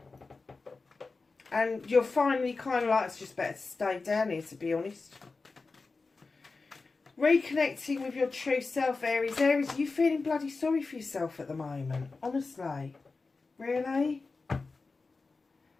And you're finally kind of like, it's just better to stay down here, to be honest. Reconnecting with your true self, Aries. Aries, are you feeling bloody sorry for yourself at the moment? Honestly. Really?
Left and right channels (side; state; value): right; quieter; 4.0 dB